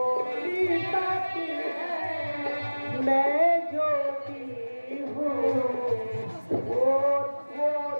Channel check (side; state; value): both; inverted; correlation -1.00